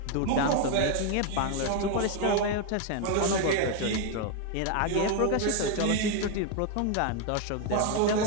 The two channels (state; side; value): different; both; correlation 0.01